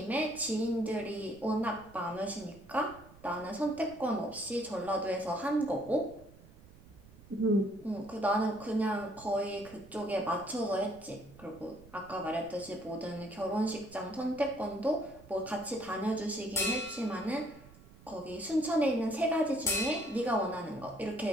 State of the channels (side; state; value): right; noise; rumble, 21 dB below the sound